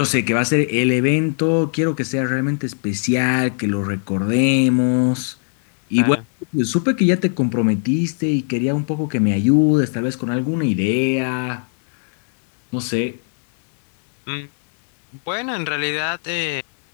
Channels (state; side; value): silent; right; 66 dB below the other